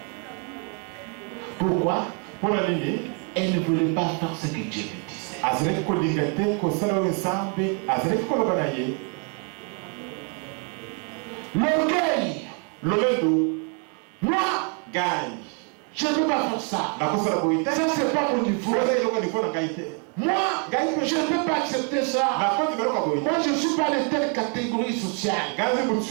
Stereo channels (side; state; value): left; quieter; 38.0 dB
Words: Pourquoi? Elle ne voulait pas faire ce que Dieu lui disait. L'orgueil. Moi, je ne peux pas faire ça. Ça, c'est pas mon niveau. Moi, je ne peux pas accepter ça. Moi, je ne suis pas de telle catégorie sociale.